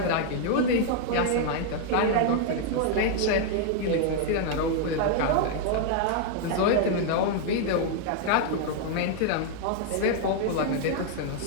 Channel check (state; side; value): different; both; correlation 0.00